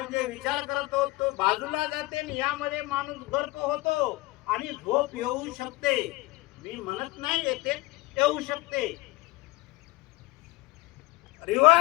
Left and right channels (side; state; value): right; quieter; 20.2 dB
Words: जे विचार करतो तो बाजूला जाते आणि यामध्ये माणूस गर्क होतो आणि झोप येऊ शकते. मी म्हणत नाही येते, येऊ शकते.